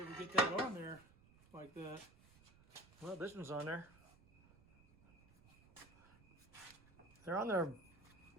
get that on there like that. Well, this one's on there. They're on there.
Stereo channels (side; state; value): right; noise; rumble, 26 dB below the sound